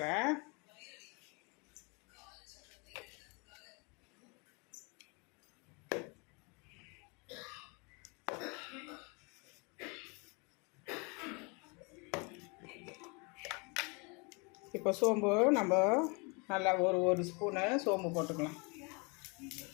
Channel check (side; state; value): right; quieter; 30.9 dB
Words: இப்போ சோம்பு நம்ம நல்லா ஒரு ஸ்பூனு சோம்பு போட்டுக்கலாம்.